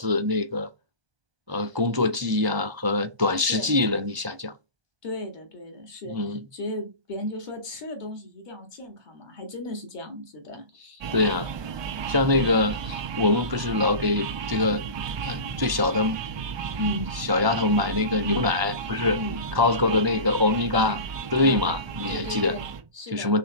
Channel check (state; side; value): late; left; 1.0 ms